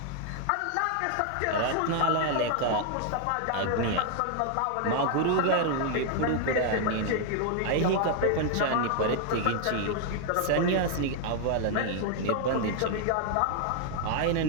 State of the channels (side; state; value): both; different; correlation 0.00